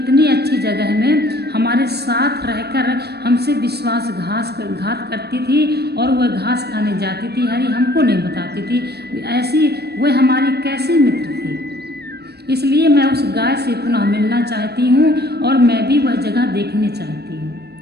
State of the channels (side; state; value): left; late; 0.47 ms